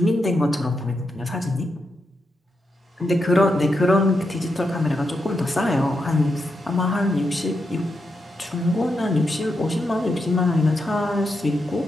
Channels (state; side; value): normal; both; correlation 0.85